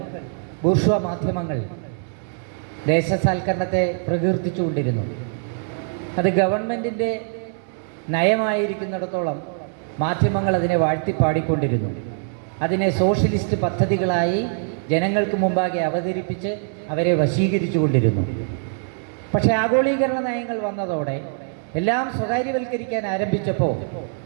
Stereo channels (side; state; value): left; silent; 64 dB below the other